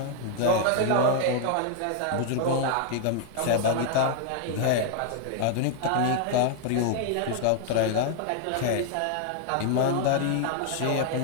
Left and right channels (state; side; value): different; both; correlation 0.00